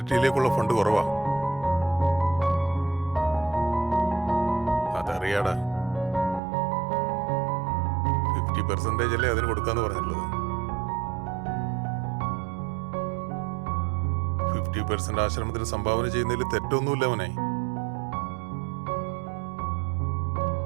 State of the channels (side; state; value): left; drops out; at 6.4 s